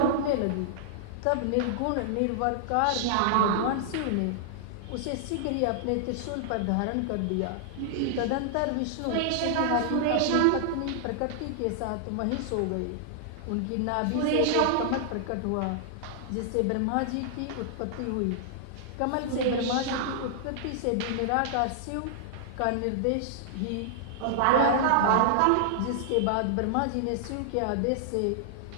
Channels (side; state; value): both; different; correlation -0.01